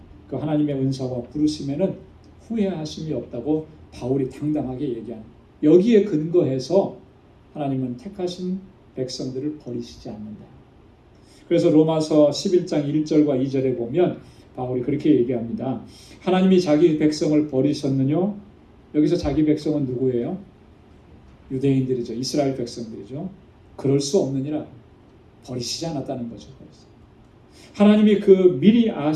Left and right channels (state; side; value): identical; both; correlation 1.00